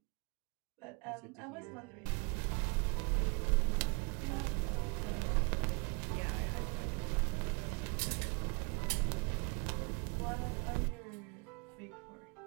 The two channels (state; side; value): quieter; left; 31.2 dB